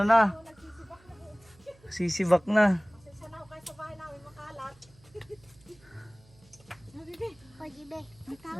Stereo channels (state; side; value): noise; right; hum, 28 dB below the sound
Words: Sisibak na. Pasensya na ho kayo sa bahay namin makalat. Habibi, pagibe.